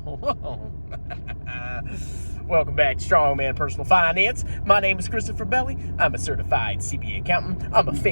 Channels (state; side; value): inverted; both; correlation -1.00